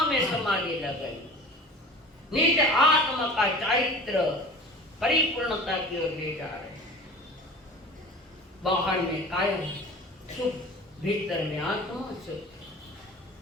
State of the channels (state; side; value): normal; both; correlation 0.39